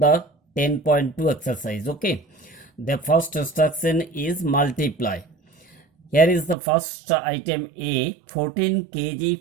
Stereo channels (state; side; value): drops out; left; at 6.6 s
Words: 10.2 exercise. Okay, the first instruction is multiply. Here is the first item A, 14